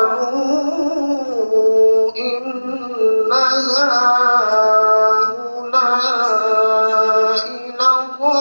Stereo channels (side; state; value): both; inverted; correlation -1.00